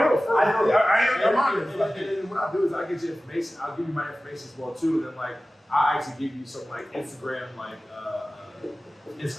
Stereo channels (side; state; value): both; normal; correlation 0.96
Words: real. I'm honest. And what I'll do is I'll get you information. I'll give you my information as well too. And then like I'll actually give you some like Instagram